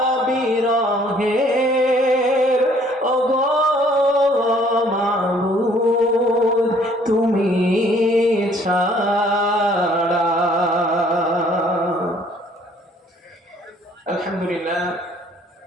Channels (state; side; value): normal; both; correlation 0.60